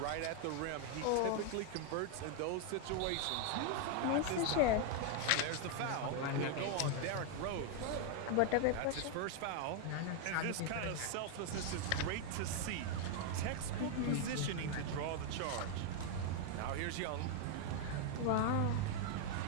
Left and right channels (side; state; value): both; different; correlation 0.01